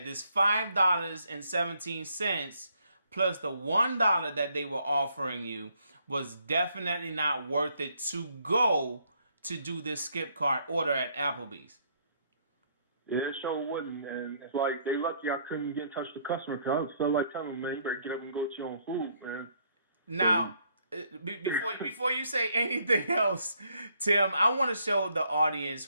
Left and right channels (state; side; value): inverted; both; correlation -0.69